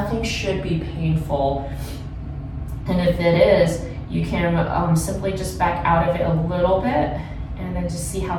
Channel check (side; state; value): both; identical; correlation 1.00